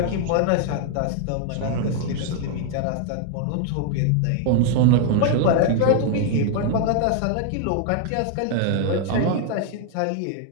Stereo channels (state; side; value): different; both; correlation 0.00